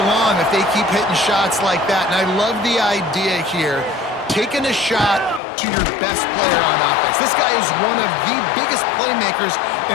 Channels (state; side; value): drops out; right; at 5.4 s